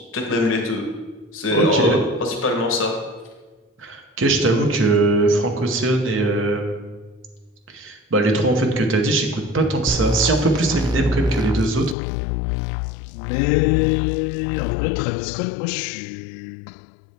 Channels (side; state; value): right; drops out; at 12.0 s